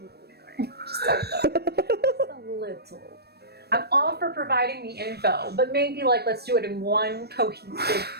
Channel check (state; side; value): late; left; 0.47 ms